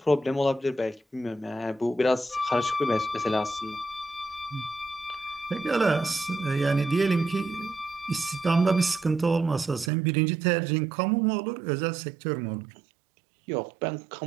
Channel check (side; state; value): left; drops out; at 9.9 s